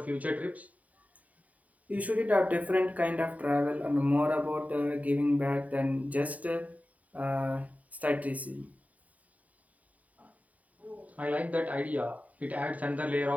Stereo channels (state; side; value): late; left; 0.071 ms